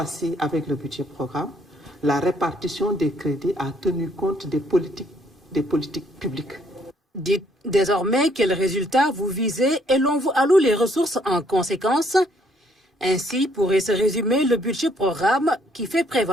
avec le budget programme, la répartition des crédits a tenu compte des politiques publiques. Dites désormais quels résultats vous visez et l'on vous alloue les ressources en conséquence. Ainsi pourrait se résumer le budget programme qui fait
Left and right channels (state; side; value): normal; both; correlation 0.67